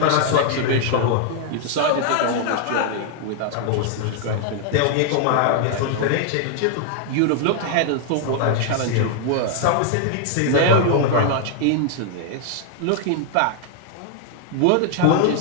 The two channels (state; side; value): different; both; correlation 0.00